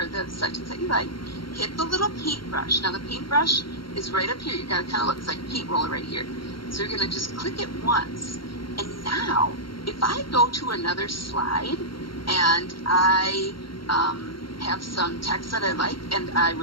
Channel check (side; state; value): right; late; 0.73 ms